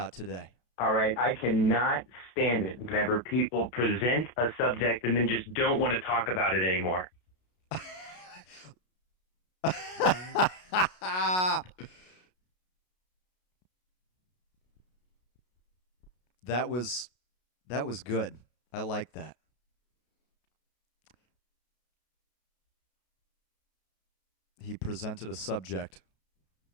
today? All right, I cannot stand it whenever people present a subject and then just don't want to talk about it anymore. that was that was good. I like that. He presented a subject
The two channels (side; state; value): right; late; 33 ms